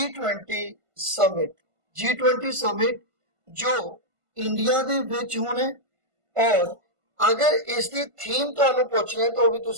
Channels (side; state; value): left; late; 1.5 ms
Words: summit. G20 summit जो इंडिया दे विच होना है, और अगर इसकी थीम तुहानू पुछना है तो भी